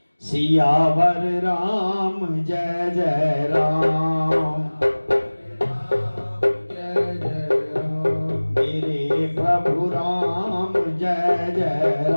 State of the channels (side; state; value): both; inverted; correlation -1.00